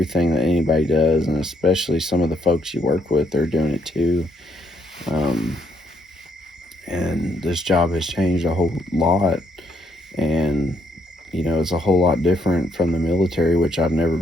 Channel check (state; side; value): normal; both; correlation 0.73